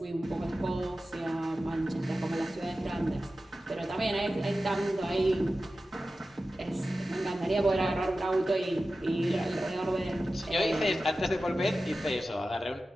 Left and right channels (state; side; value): normal; both; correlation 0.94